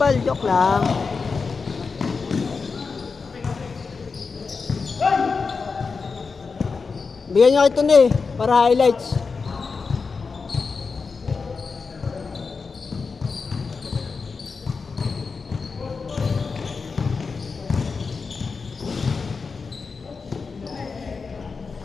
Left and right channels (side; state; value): right; quieter; 4.8 dB